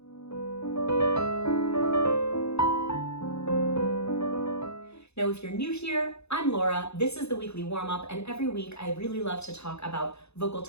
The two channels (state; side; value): late; right; 0.80 ms